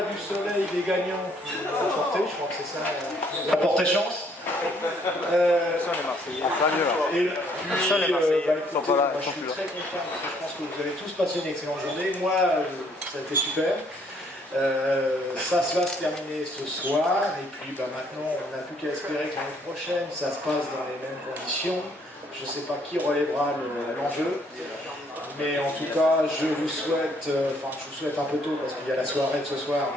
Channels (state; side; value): normal; both; correlation 0.66